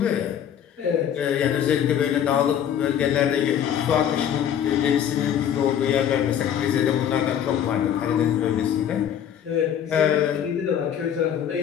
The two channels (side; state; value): right; quieter; 9.3 dB